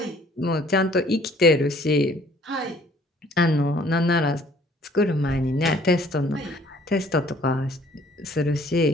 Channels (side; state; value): both; normal; correlation 0.58